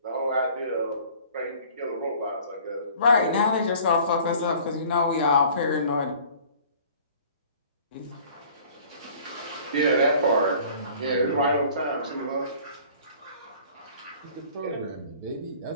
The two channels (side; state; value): both; inverted; correlation -0.50